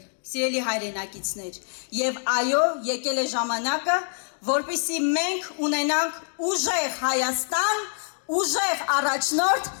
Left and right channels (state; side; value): silent; right; digital silence